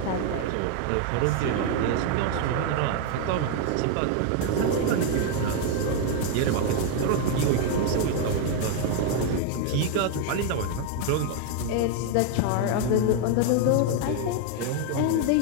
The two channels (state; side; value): different; both; correlation 0.01